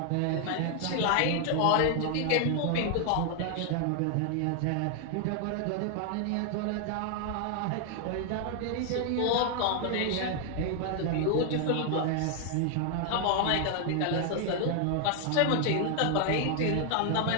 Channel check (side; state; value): both; different; correlation 0.00